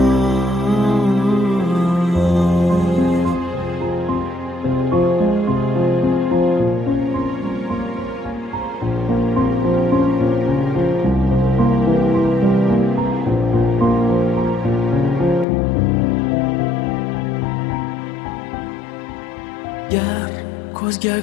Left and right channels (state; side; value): drops out; right; at 15.5 s